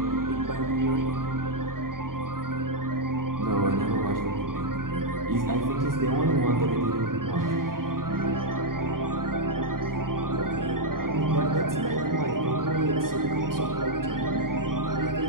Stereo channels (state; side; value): late; left; 0.92 ms